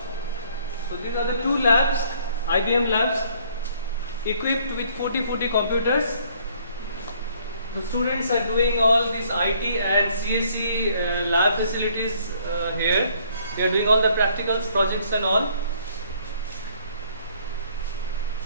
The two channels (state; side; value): inverted; both; correlation -0.63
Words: So these are the two labs, IBM labs, equipped with 40 computers. The students are doing all these IT and CSE lab facilities here. They are doing all the practicals, projects and all.